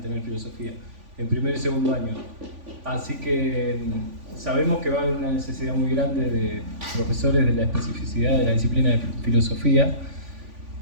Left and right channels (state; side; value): late; left; 3.5 ms